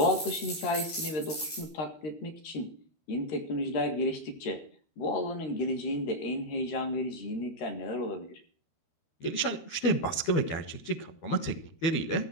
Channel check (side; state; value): right; late; 13 ms